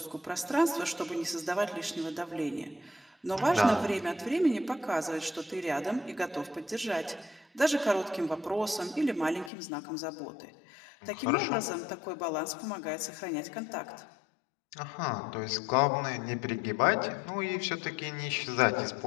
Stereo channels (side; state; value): right; drops out; at 9.5 s